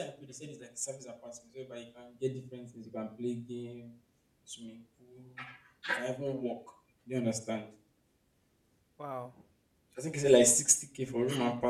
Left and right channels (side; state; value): both; identical; correlation 1.00